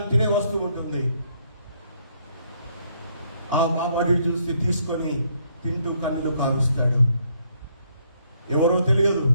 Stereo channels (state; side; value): inverted; both; correlation -0.70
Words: తినే వస్తువు ఉంటుంది. ఆ బాబాటి చూసి తీసుకొని తింటూ కన్నులు కారుస్తాడు. ఎవరో తెలియదు,